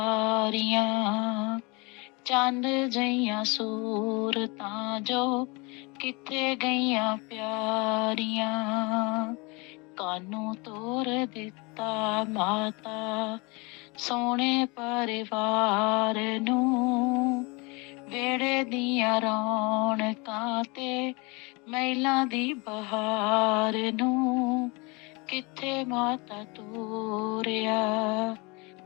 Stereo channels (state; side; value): quieter; right; 27.9 dB